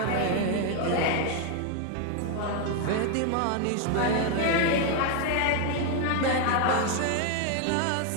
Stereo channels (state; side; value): different; both; correlation 0.01